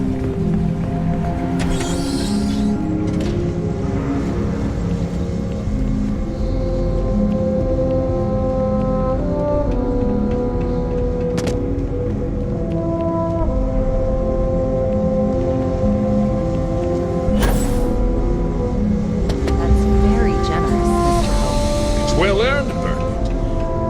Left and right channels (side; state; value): both; identical; correlation 1.00